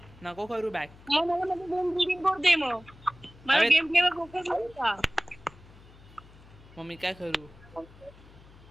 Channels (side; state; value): left; noise; hum, 22 dB below the sound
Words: नको करू बॅक. मग मला गेम रीडिंग बोर्ड दे. मग मला गेम प्ले वर फोकस होता. मग मी काय करू?